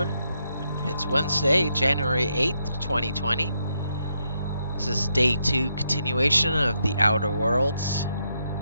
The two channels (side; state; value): both; inverted; correlation -0.79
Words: It's Wednesday, January 8th, 2020. This is day 2 continuation of The Outer Worlds.